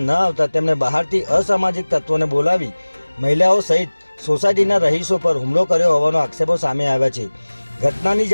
ન આવતા તેમણે બહારથી અસામાજિક તત્વોને બોલાવી મહિલાઓ સહિત સોસાયટીના રહીશો પર હુમલો કર્યો હોવાનો આક્ષેપો સામે આવ્યા છે। ઘટનાની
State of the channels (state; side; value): inverted; both; correlation -1.00